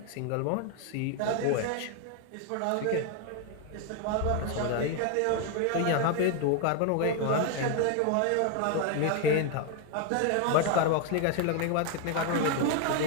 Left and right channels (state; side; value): different; both; correlation 0.01